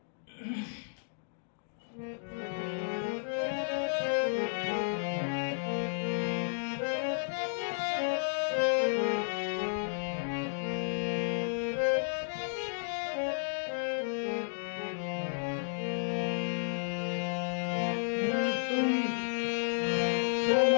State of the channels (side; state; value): right; silent; digital silence